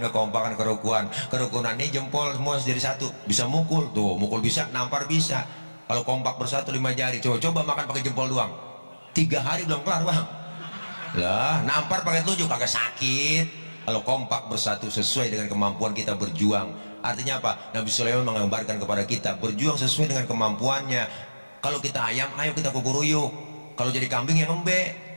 kerukunan ini jempol semua jadi satu. Bisa mukul tuh, mukul bisa, nampar bisa. Kalau kompak bersatu 5 jari, coba makan pakai jempol doang, 3 hari belum kelar bang. Lah nampar pakai telunjuk agak sakit. Kalau kompak bersatu sesuai dengan kemampuan kita berjuang. Artinya apa? Nabi Sulaiman menggambarkan kepada kita berjuang sesuai dengan kemampuannya. Kalau kita ayam, ayo kita kukuruyuk. Kalau jadi kambing yang ngembek,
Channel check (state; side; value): inverted; both; correlation -1.00